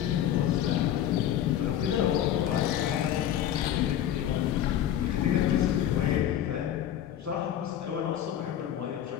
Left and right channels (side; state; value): right; quieter; 10.9 dB